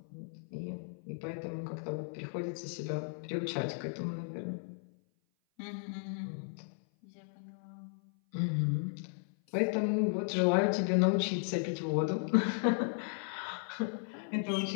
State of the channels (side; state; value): right; silent; 54 dB below the other